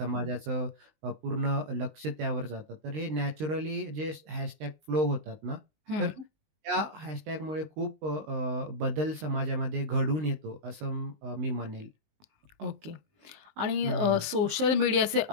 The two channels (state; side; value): late; left; 19 ms